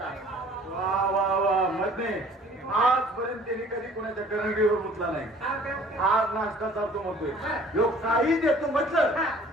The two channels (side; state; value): both; normal; correlation 0.52